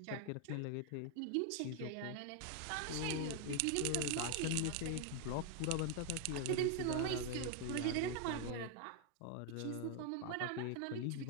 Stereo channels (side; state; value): both; different; correlation 0.00